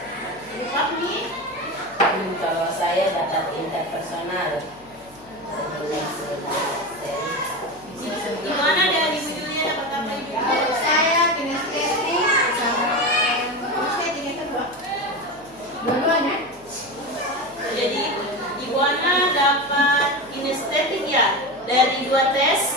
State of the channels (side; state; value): left; noise; hum, 27 dB below the sound